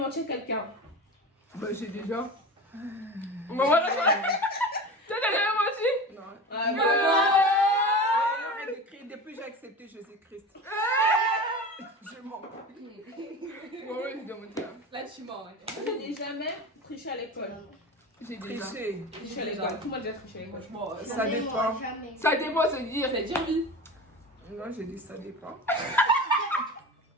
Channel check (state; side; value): normal; both; correlation 0.30